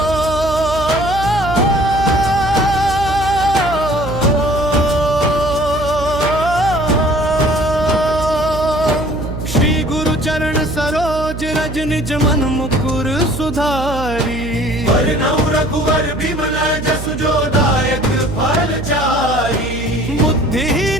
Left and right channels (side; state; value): right; noise; hum, 8 dB below the sound